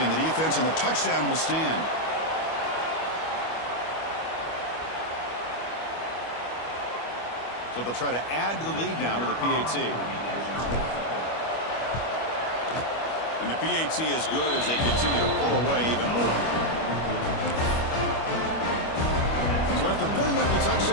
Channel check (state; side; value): late; right; 25 ms